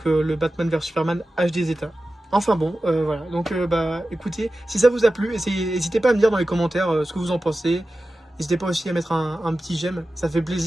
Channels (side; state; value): both; normal; correlation 0.94